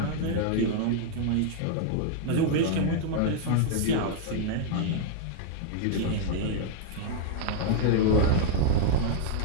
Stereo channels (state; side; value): different; both; correlation 0.00